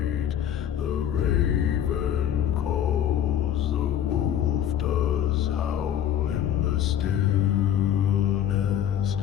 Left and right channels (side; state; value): right; quieter; 10.2 dB